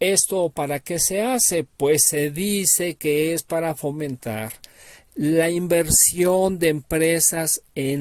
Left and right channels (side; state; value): both; identical; correlation 1.00